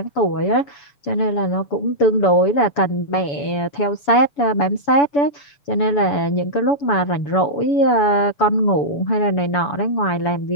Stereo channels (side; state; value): right; late; 7.0 ms